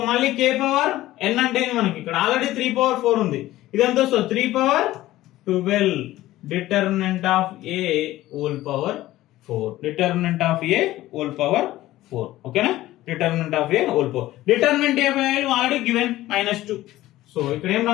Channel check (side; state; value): right; quieter; 15.8 dB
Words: మళ్ళీ K పవర్ n అంటే మనకి ఇక్కడ ఆల్రెడీ 3 power 4 ఉంది. ఇదంతా so 3 power 12 determinant of A whole power 4. Determinant of A whole power 4. ఓకేనా? Determinant of A whole power. Determinant A value already given -2. So ఇక్కడ ఏం